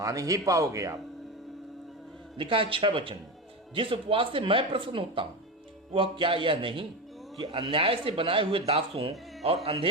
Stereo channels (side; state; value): both; normal; correlation 0.19